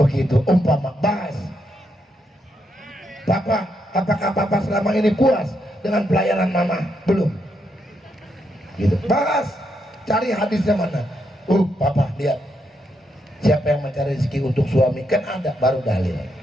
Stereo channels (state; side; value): normal; both; correlation 0.79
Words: umpama bahas. Papa, apakah Papa selama ini puas dengan pelayanan Mama? Belum. Gitu. Bahas, cari hadisnya mana. Papa lihat, siapa yang mencari rezeki untuk suami, kan ada, baru dalil.